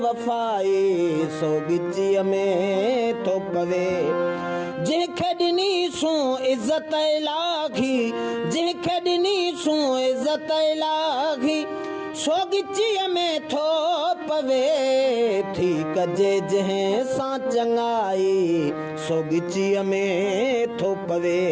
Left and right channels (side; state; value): both; identical; correlation 1.00